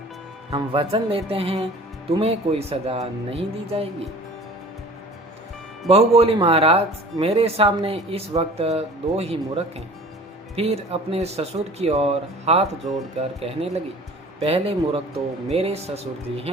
हम वचन लेते हैं तुम्हें कोई सजा नहीं दी जाएगी। बहू बोली, महाराज मेरे सामने इस वक्त दो ही मूर्ख हैं। फिर अपने ससुर की ओर हाथ जोड़कर कहने लगी, पहले मूर्ख तो मेरे ससुर जी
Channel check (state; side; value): normal; both; correlation 0.44